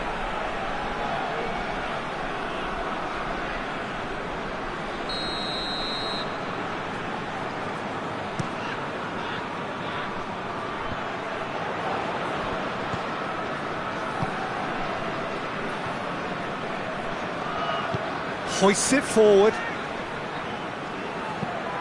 Hoists it forward.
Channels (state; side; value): identical; both; correlation 1.00